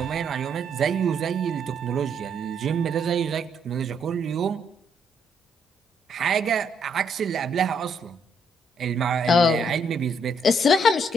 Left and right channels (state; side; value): normal; both; correlation 0.72